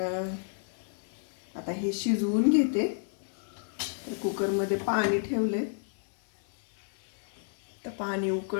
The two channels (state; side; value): silent; right; 57 dB below the other